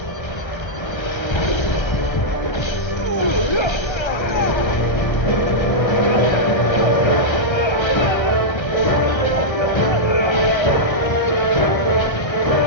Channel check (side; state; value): right; late; 1.6 ms